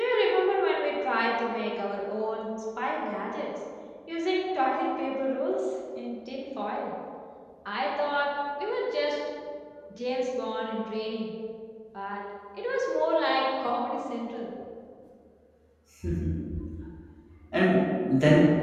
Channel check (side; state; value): both; identical; correlation 1.00